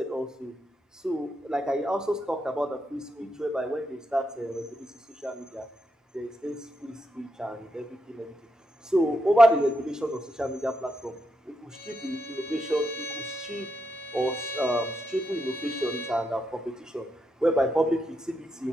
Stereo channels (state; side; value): normal; both; correlation 0.83